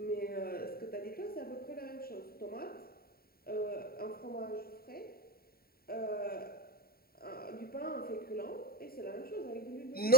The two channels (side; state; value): right; late; 0.44 ms